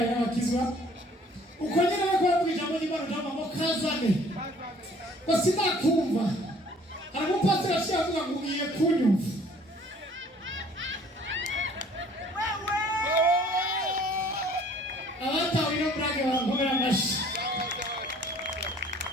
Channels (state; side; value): normal; both; correlation 0.55